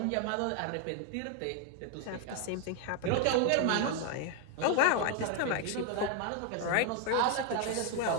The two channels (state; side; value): different; both; correlation 0.01